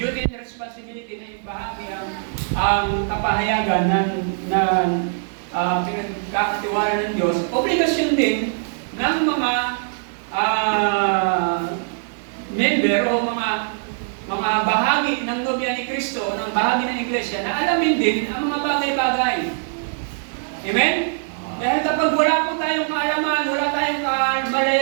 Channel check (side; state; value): left; silent; digital silence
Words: and responsibility na ibahagi ang kapahayagan na pinagkakatiwala ng Diyos, obligasyon din ng mga member o mga bahagi ng nobya ni Kristo, ng bahagi ng iglesia, na alamin din ang mga bagay-bagay. Amen? Dahil kapag wala po tayong kaalaman, wala tayong